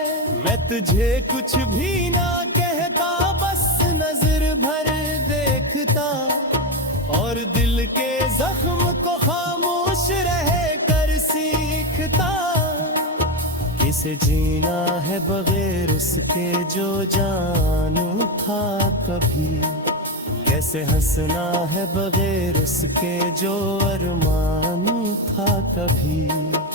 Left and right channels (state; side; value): normal; both; correlation 0.12